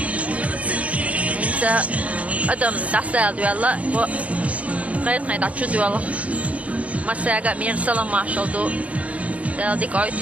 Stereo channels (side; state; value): left; late; 0.066 ms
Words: انت ادم دستال دولا و غير غير تشو دولا مساغا مير سلام ماشال دو ديك